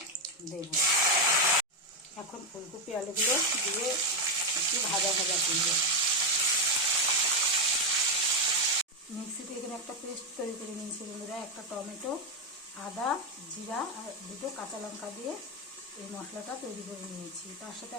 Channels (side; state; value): both; normal; correlation 0.06